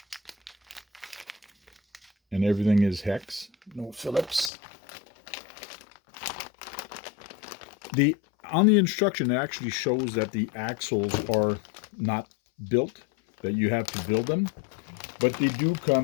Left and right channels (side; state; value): right; drops out; at 4.5 s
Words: everything is hex. No Phillips. On the instruction, it actually shows that the axles are not built, that you have to build them, but they do